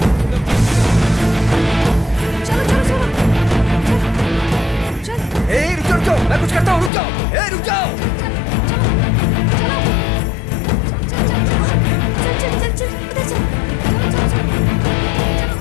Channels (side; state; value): right; drops out; at 6.9 s